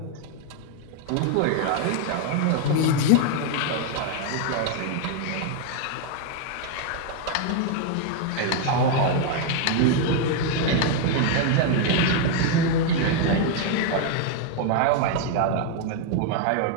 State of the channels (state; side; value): different; both; correlation 0.00